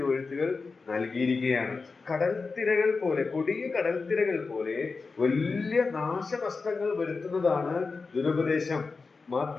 നൽകിയിരിക്കുകയാണ്. കടൽത്തിരകൾ പോലെ, കൊടിയ കടൽത്തിരകൾ പോലെ വലിയ നാശനഷ്ടങ്ങൾ വരുത്തുന്നതാണ് ദുരുപദേശം.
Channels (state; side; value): quieter; right; 4.3 dB